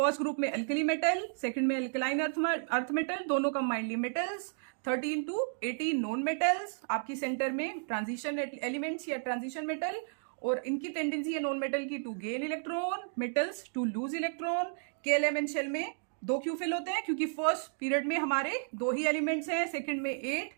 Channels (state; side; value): silent; left; digital silence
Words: ग्रुप में अल्कली मेटल, सेकंड में अल्कलाइन अर्थ मेटल, दोनों combinedly metals, 13 to 18 non metals, आपकी सेंटर में ट्रांजिशन एलिमेंट्स या ट्रांजिशन मेटल, और इनकी टेंडेंसी है नॉन मेटल की to gain electron, metals to lose electron. के एलिमेंट शेल में 2 क्यों फिल होते हैं? क्योंकि फर्स्ट पीरियड में हमारे 2 ही एलिमेंट्स हैं, सेकंड में 8,